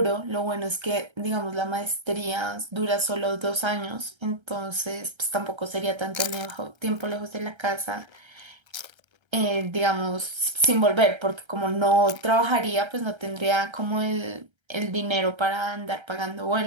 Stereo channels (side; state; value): left; late; 1.3 ms